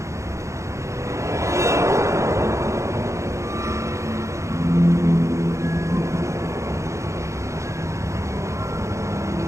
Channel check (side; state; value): left; late; 0.14 ms